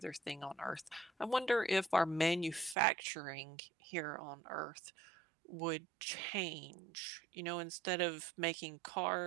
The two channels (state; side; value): drops out; left; at 2.8 s